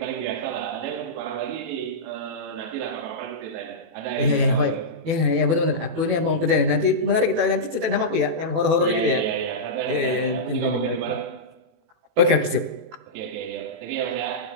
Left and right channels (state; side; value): late; left; 18 ms